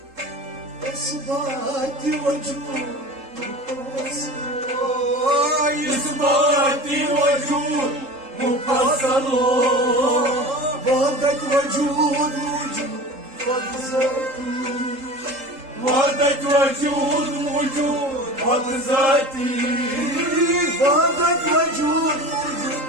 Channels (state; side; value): late; left; 3.7 ms